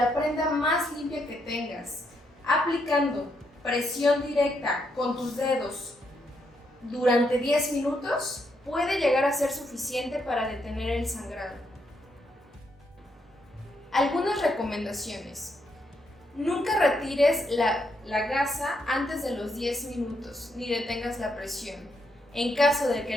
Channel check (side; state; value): both; normal; correlation 0.78